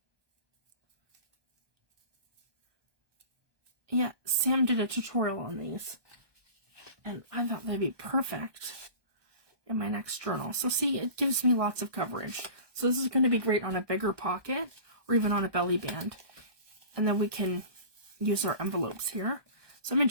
Yeah, Sam did a tutorial on these, and I thought they'd be perfect in my next journal. So see, it gives me lots of coverage. So this is going to be great on a bigger pocket or even on a belly band. And then we can use our envelopes here. So I'm going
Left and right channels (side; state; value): left; late; 1.2 ms